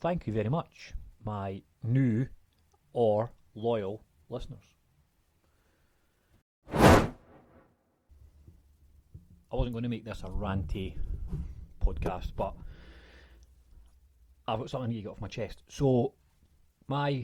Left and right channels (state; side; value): identical; both; correlation 1.00